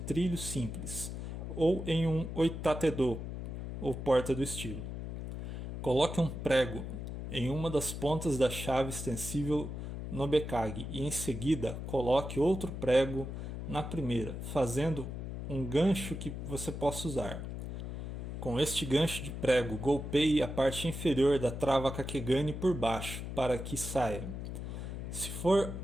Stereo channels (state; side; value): noise; left; hum, 6 dB below the sound